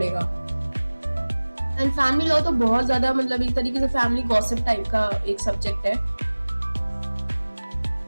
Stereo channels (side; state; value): both; inverted; correlation -1.00